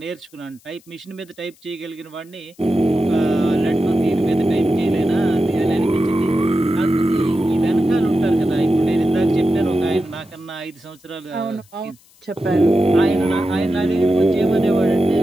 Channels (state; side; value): noise; left; hiss, 29 dB below the sound